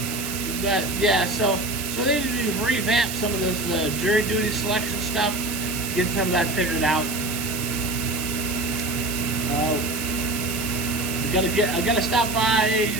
So they need to revamp some of this jury duty selection stuff, get some of that figured out. I gotta stop by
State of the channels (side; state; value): right; noise; hiss, 6 dB below the sound